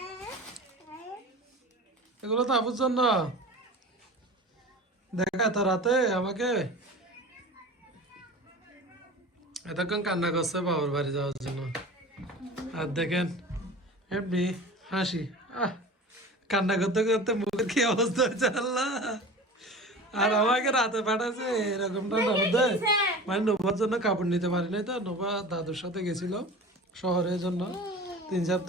এগুলো তো আপুর জন্য। দেখা তো রাতে আমাকে এতক্ষণ কান্না করছে বাবার বাড়ি যাওয়ার জন্য। আর দেখেন এমনি হাসি, কান্না করতে করতে মুখের কি অবস্থা হয়েছে আল্লাহ। আর আমাকে রাতে পাঠাচ্ছে এরকমটা নবদে, মানে নোবার জন্য কাপড় নিতে পারি নাই তো, নোবা দাদুর সাথে গেছিল শহরের জন্য 3-4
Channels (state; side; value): normal; both; correlation 0.37